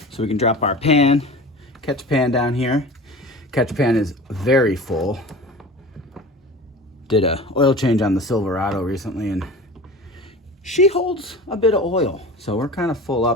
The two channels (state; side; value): normal; both; correlation 0.36